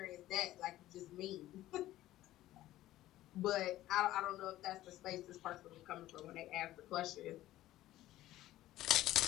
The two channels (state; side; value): quieter; right; 15.0 dB